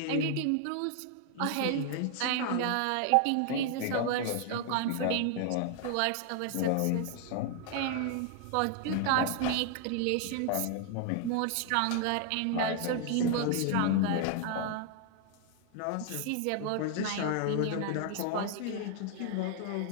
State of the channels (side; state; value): both; different; correlation 0.00